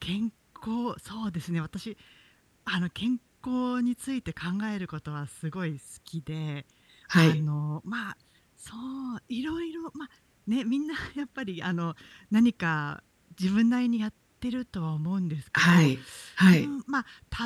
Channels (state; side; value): identical; both; correlation 1.00